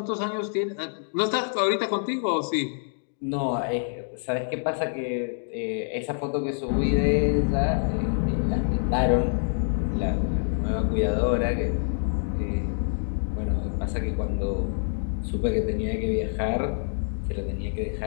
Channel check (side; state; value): right; silent; digital silence